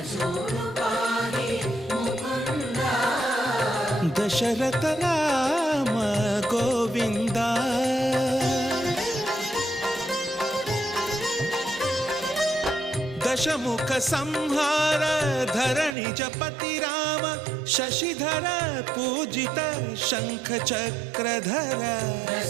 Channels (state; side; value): drops out; left; at 16.0 s